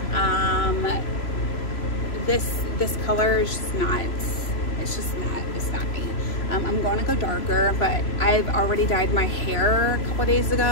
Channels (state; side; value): late; right; 3.0 ms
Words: This color is just not. It's not me. I'm going to go darker, but I've already dyed my hair a couple days